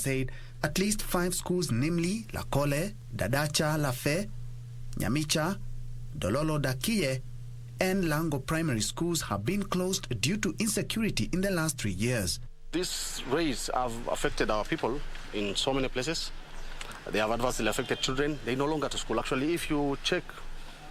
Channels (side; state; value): both; identical; correlation 1.00